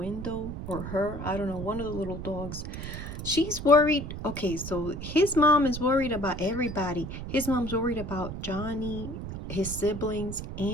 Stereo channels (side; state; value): right; noise; rumble, 7 dB below the sound